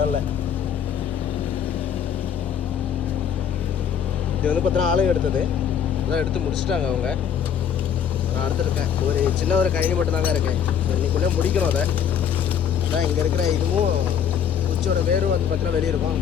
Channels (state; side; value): quieter; right; 8.2 dB